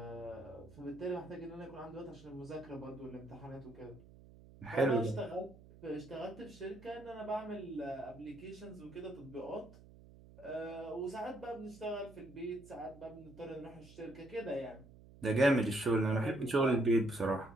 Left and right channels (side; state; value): right; noise; hum, 20 dB below the sound